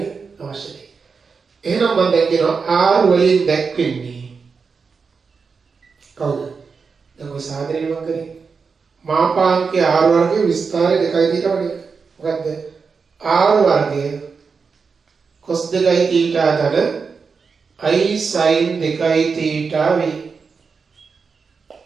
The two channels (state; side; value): quieter; left; 5.2 dB